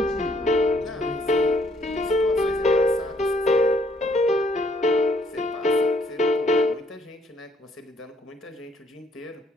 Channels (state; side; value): normal; both; correlation 0.66